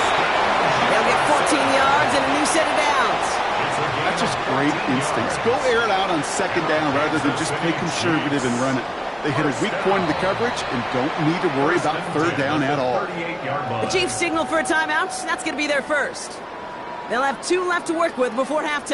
They'll get 14 yards and a new set of downs. That's just great instincts. Go air it out on 2nd down rather than just play conservative and run it. They hit a weak point in the coverage and don't need to worry about 3rd down at all. The Chiefs signal for a timeout. That's going to be their first. They'll have 2 left to work with before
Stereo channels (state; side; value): identical; both; correlation 1.00